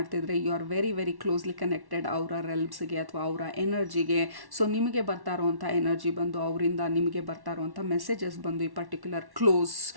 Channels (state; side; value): late; left; 1.1 ms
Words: you are very very closely connected ಅವರ ರೆಲ್ಮ್ಸ್ಗೆ ಅಥವಾ ಅವರ ಎನರ್ಜಿಗೆ. ಸೊ ನಿಮಗೆ ಬರ್ತಾ ಇರುವಂಥ ಎನರ್ಜಿ ಬಂದು, ಅವರಿಂದ ನಿಮಗೆ ಬರ್ತಾ ಇರುವಂಥ ಮೆಸೇಜಸ್ ಬಂದು, ಈ ಪರ್ಟಿಕ್ಯುಲರ್ ಕ್ಲೋಸ್